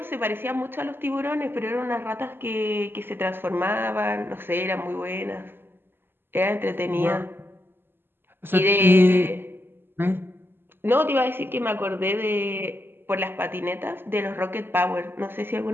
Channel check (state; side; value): late; left; 0.10 ms